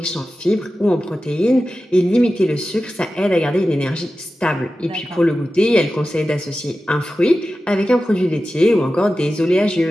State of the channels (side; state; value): both; normal; correlation 0.94